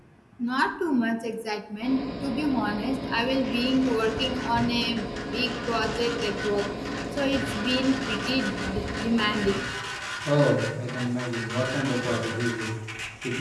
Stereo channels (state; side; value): identical; both; correlation 1.00